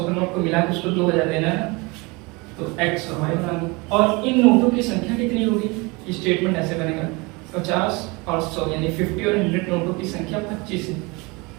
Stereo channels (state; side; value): quieter; left; 26.4 dB